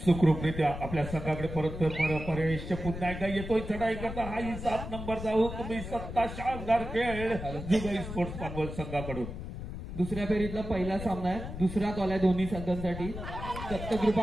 सुखरूपरित्या आपल्या संघाकडे परत परेश पुन्हा एकदा येतोय चढाई करता. हाही 7 नंबरचा हुकमी सत्ता शानदार खेळ जुगाई स्पोर्ट्स पानवल संघाकडून. दुसऱ्या फेरीतला पहिला सामना आहे. दुसरा कॉल आहे दोन्ही संघांसाठी.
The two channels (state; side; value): noise; left; rumble, 8 dB below the sound